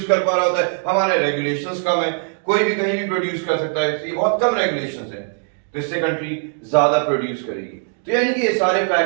कर पा रहा होता है, हमारे रेगुलेशंस कम है, कोई भी कहीं भी प्रोड्यूस कर सकता है, ये बहुत कम रेगुलेशंस है, तो इससे कंट्री ज्यादा प्रोड्यूस करेगी। तो यानी कि ये सारे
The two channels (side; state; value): left; silent; 55 dB below the other